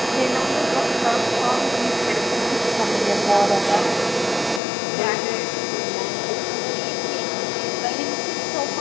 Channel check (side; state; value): right; drops out; at 4.6 s